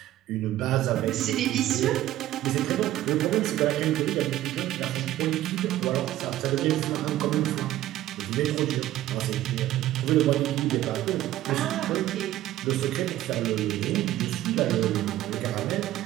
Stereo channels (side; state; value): left; quieter; 14.2 dB